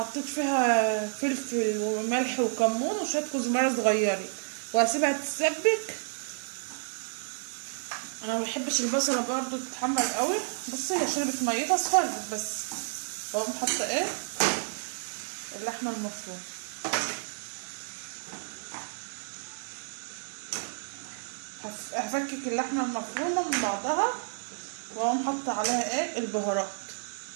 فيها فلفل وملح وكمون وشويه كزبره صغيره وهسيبها تتسبك. انا ما بحبش البصله برضو تتحمر قوي. بصي هي شربت ميتها اصفرت بس. اقوم حاطه ايه؟ اللحمه المفرومه. هفكك اللحمه المفرومه من بعضها واقوم حاطه عليها ايه؟ البهارات.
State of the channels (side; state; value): left; silent; digital silence